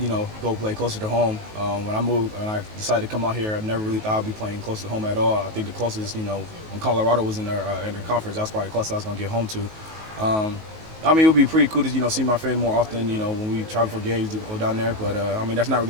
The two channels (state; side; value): late; left; 19 ms